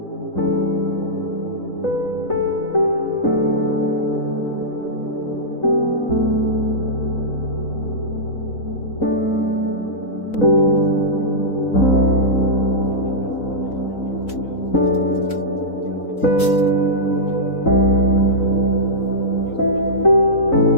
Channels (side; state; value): right; late; 3.9 ms